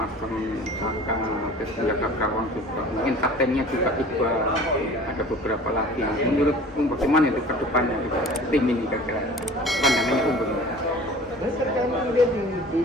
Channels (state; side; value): normal; both; correlation 0.44